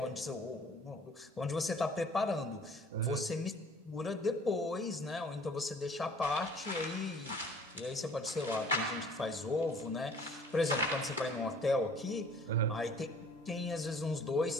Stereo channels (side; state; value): both; normal; correlation 0.53